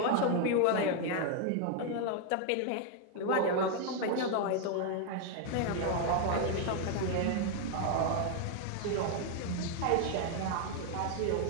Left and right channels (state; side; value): different; both; correlation 0.00